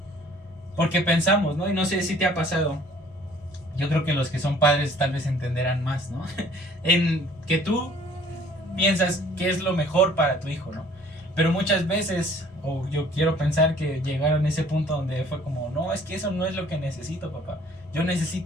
porque pensamos, ¿no? Y no sé si te ha pasado, yo creo que los que son padres tal vez entenderán más, ¿no? En que tú piensas que es lo mejor para tu hijo, ¿no? Pero muchas veces, o yo quiero pensar que llegaron a ese punto donde fue como, no, es que eso no es lo que necesito, papá. Yo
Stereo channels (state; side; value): normal; both; correlation 0.55